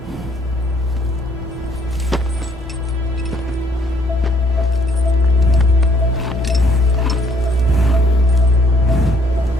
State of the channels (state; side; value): normal; both; correlation 0.65